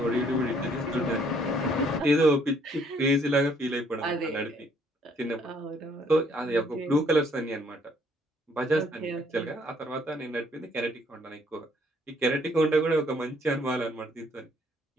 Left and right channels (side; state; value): both; normal; correlation 0.65